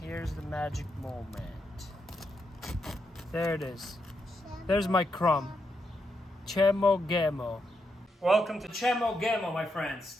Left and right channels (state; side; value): normal; both; correlation 0.82